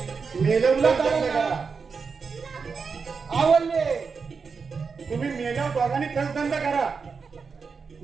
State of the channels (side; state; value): left; quieter; 5.3 dB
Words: मेलवला करा आवडले तुम्ही मेल्यावर दोघांनी धंदा करा